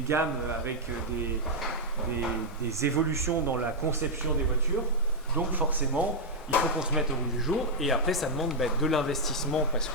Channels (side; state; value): both; normal; correlation -0.03